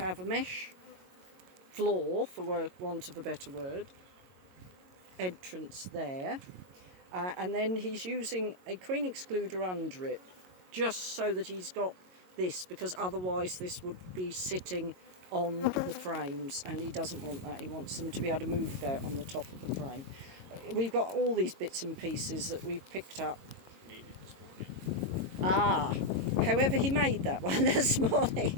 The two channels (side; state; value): left; late; 22 ms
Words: a mesh floor, for want of a better word, entrance there. And then he's using a queen excluder under it, just so that he's got this, because otherwise this would be sitting on the frames, and he doesn't want that. He wants them to be able to move out on the top of the frame. We've got all these bits and pieces that we've picked up. Maybe this morning. Ah, however he made that one this